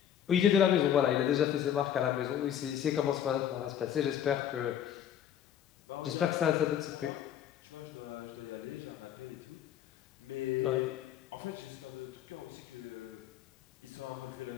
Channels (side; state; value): right; quieter; 9.8 dB